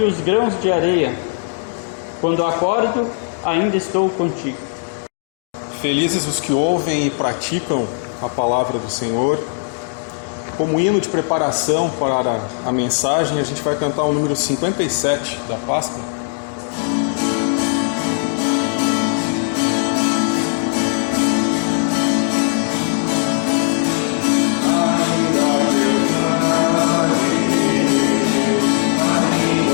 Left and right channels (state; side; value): silent; right; digital silence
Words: os grãos de areia. Quando acordo, ainda estou contigo. Felizes os que ouvem e praticam a palavra do Senhor. Como hino de preparação para a mensagem, a gente vai cantar o número 57 da pasta.